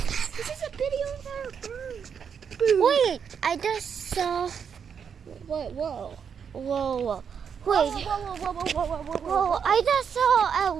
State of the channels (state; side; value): quieter; left; 7.1 dB